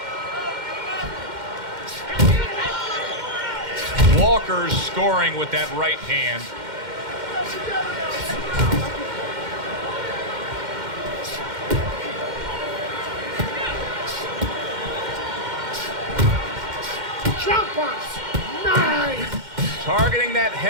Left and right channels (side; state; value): left; late; 2.1 ms